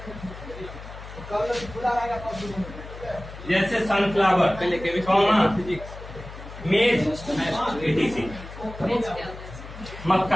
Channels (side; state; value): left; noise; hum, 13 dB below the sound